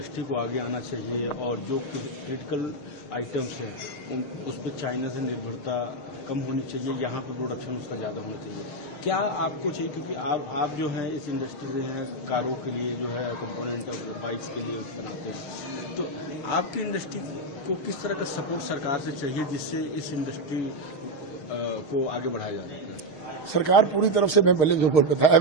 को आगे आना चाहिए और जो क्रिटिकल आइटम्स हैं उस पर चाइना से निर्भरता कम होनी चाहिए, यहाँ पर प्रोडक्शन उसका ज़्यादा होना चाहिए। क्या आपको चाहिए, क्योंकि आप जो हैं इस इंडस्ट्री में हैं, कारों के लिए जो है कंपोनेंट बाइक्स के लिए बनाते हैं, तो आपकी इंडस्ट्री को किस तरह का सपोर्ट सरकार से चाहिए जिससे इस इंडस्ट्री को आगे बढ़ाया जा सके? सरकार पूरी तरफ से, मैं पहले जो बताया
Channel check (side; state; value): right; late; 6.5 ms